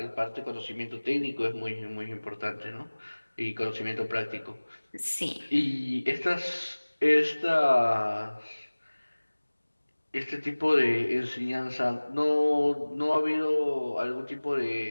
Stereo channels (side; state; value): both; inverted; correlation -1.00